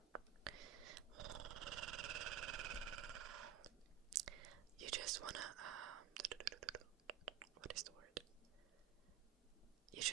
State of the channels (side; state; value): left; quieter; 10.8 dB